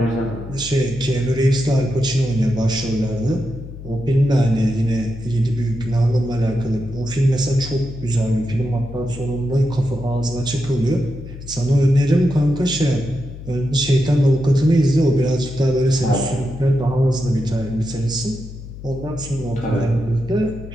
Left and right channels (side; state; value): left; noise; hum, 13 dB below the sound